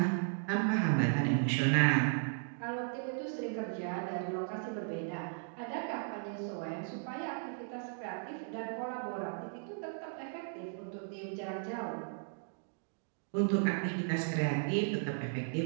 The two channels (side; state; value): left; silent; digital silence